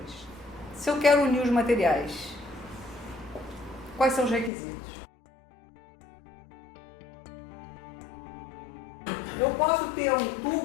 Se eu quero unir os materiais, quais são os requisitos? Eu posso ter um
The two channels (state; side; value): drops out; right; at 4.5 s